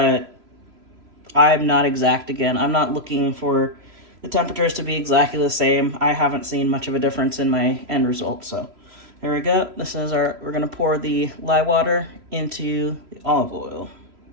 I'm not exact again. I'm not looking for the temperatures to be exactly the same. I haven't seen much of a difference in my end result, so there we go. This is we're gonna pour the lye water into the olive oil.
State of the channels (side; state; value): left; late; 3.0 ms